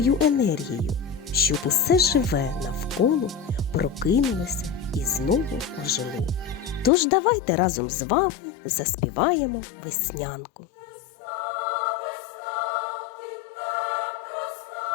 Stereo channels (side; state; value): right; drops out; at 6.9 s